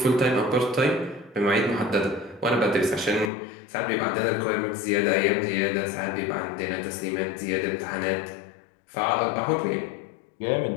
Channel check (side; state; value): right; drops out; at 3.3 s